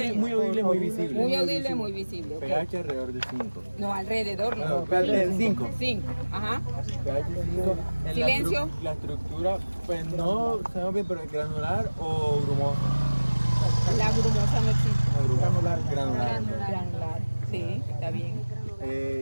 muy audible, muy visible. Muy audible, muy visible. Okay. pH alrededor de 5. No, alrededor no. pH de 5. 5. Ajá. pH 5. Silencio. La estructura, pues no sabemos bien, pero es granular o grumosa. La grumosa no existe. Granular. Sí, está bien.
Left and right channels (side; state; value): both; inverted; correlation -1.00